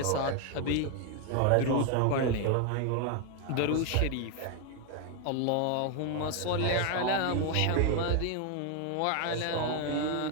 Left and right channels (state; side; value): different; both; correlation 0.01